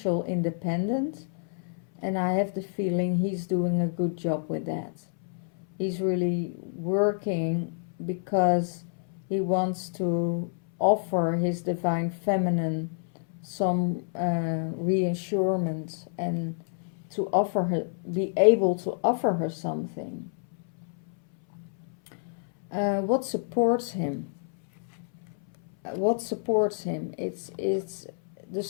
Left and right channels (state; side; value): silent; right; 59 dB below the other